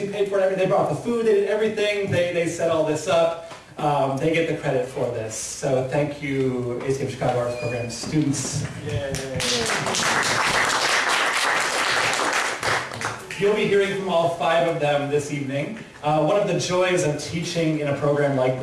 paid for it, they brought the food, they did everything, they set all this up. They get the credit for this. So thank you, ACM Chicago Arts Program students. Yay. You'll be hearing from all 5 of them this evening. One of the joys of teaching in a program like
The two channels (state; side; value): identical; both; correlation 1.00